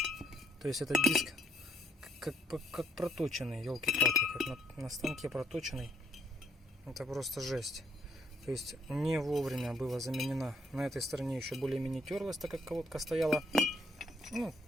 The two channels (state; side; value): normal; both; correlation 0.71